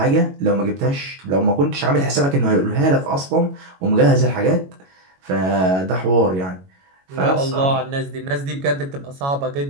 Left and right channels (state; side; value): late; left; 22 ms